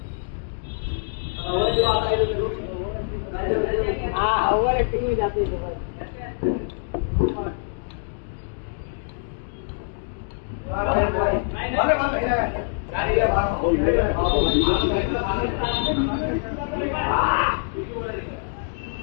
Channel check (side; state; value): right; silent; digital silence